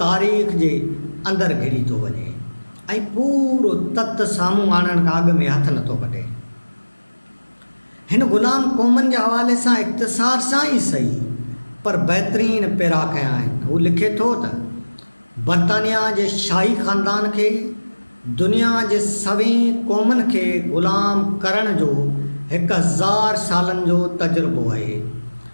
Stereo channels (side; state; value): both; inverted; correlation -1.00